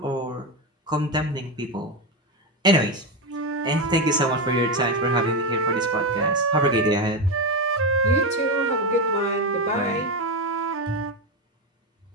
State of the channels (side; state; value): both; normal; correlation 0.12